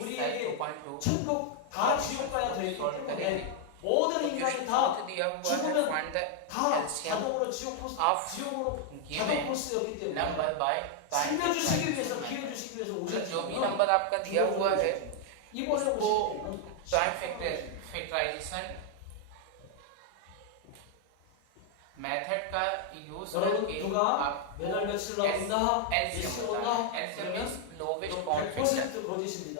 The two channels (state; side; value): different; both; correlation 0.00